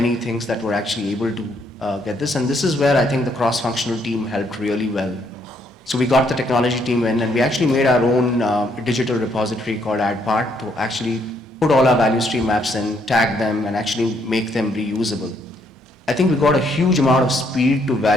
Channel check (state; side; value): normal; both; correlation 0.71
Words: things that were actually able to get this. And this is where I think the cross-functional team helped really well. So we got the technology team in and we actually made our own digital repository called AdPart to actually put all our value stream maps in, tag them, and actually make them reusable. I think we got a huge amount of speed to